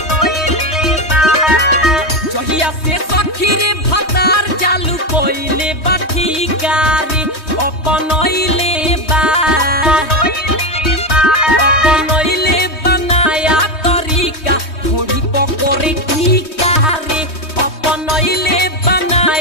जहिया से सखी रे भतार चालू कोइले बठिकारी, अपनइले बनाया तरीका ढोड़ी पकोरे टीका रे, अपनइले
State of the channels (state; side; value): late; right; 3.2 ms